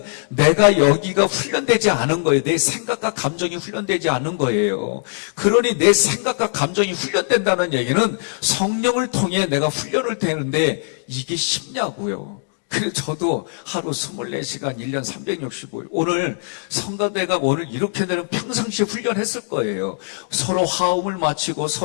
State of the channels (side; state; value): right; silent; 65 dB below the other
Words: 내가 여기가 훈련되지 않은 거예요. 내 생각과 감정이 훈련되지 않은 거예요. 그러니 내 생각과 감정이 훈련된다는 얘기는 성령을 통해 내가 훈련을 되는데 이게 쉽냐고요. 그래서 저도 하루 24시간 1년 365일 오늘 성가대가 오늘 이렇게 되는 평상시에 훈련했을 거예요. 서로 화음을 맞추고